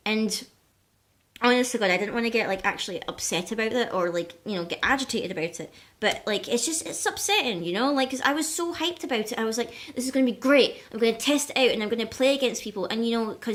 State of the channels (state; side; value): identical; both; correlation 1.00